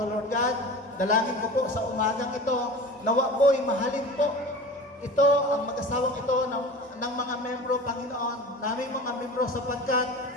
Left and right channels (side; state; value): both; normal; correlation 0.36